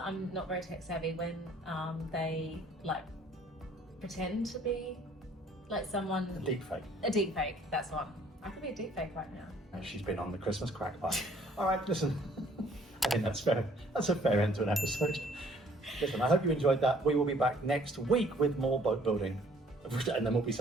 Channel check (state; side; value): normal; both; correlation 0.59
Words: I'm not very tech savvy, when they like pretend to be like someone. A deep fake. A deep fake, that's one. I could be a deep fake right now. She's been on the Christmas crack pipe. All right, listen. I think that's fair. That's a fair end to an episode. Listen, I hope you enjoyed that. We will be back next week with more boat building, and then we'll be